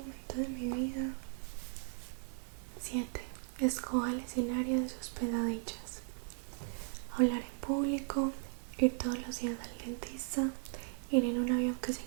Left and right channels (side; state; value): left; silent; 53 dB below the other